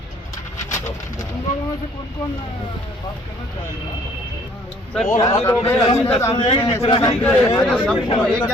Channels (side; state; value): both; normal; correlation 0.58